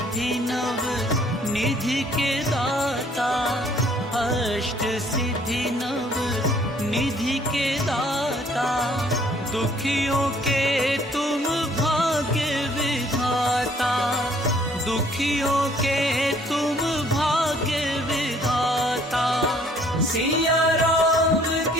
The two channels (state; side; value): normal; both; correlation 0.60